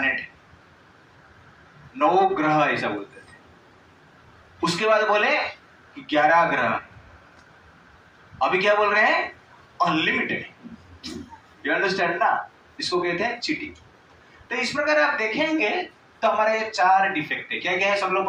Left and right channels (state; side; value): identical; both; correlation 1.00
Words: है, 9 ग्रह, ऐसा बोलते थे। उसके बाद बोले कि 11 ग्रह। अभी क्या बोल रहे हैं? अनलिमिटेड। यू अंडरस्टैंड ना? इसको कहते हैं चीटिंग। तो इस प्रकार आप देखेंगे तो हमारे ये 4 डिफेक्ट है। क्या क्या है? सब लोग